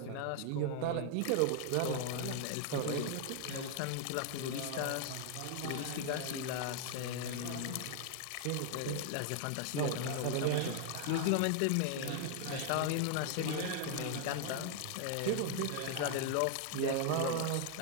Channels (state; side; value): different; both; correlation 0.00